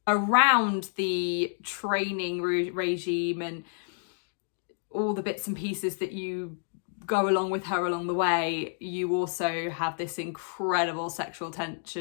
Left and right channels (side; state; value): right; silent; digital silence